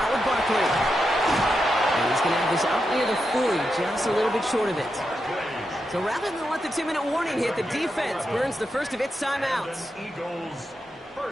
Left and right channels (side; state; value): both; normal; correlation 0.86